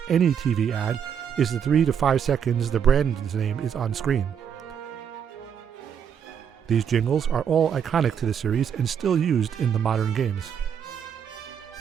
any TV ad is the 3 to 5 seconds the brand's name is on screen." These jingles are all iconic to the series and still used in the modern games.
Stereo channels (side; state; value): left; quieter; 7.9 dB